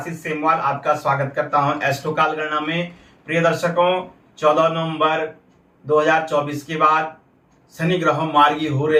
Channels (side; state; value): both; identical; correlation 1.00